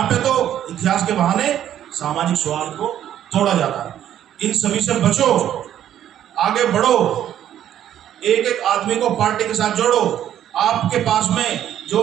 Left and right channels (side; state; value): left; quieter; 11.0 dB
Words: पे तो इतिहास के बहाने सामाजिक सौहार्द को तोड़ा जाता है। इन सभी से बचो, आगे बढ़ो, एक एक आदमी को पार्टी के साथ जोड़ो। आपके पास में